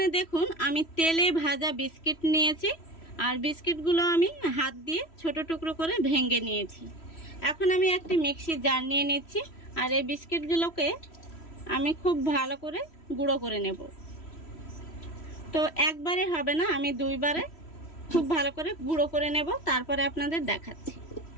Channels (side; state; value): right; late; 3.1 ms